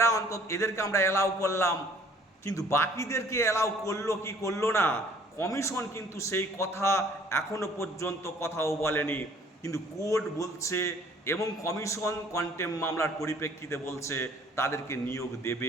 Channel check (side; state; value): both; normal; correlation 0.56